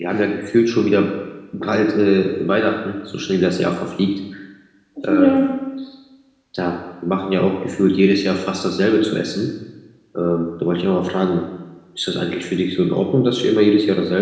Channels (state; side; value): identical; both; correlation 1.00